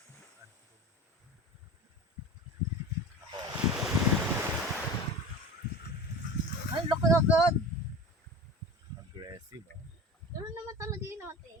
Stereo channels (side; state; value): both; normal; correlation 0.33